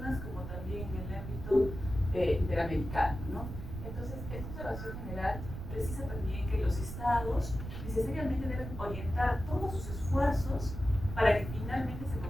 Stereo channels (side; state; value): right; noise; rumble, 8 dB below the sound